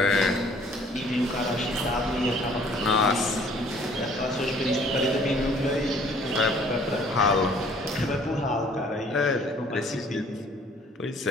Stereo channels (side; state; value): both; normal; correlation 0.56